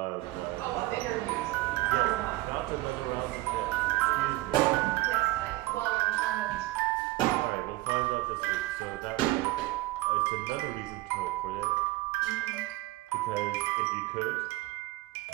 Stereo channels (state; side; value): quieter; left; 19.4 dB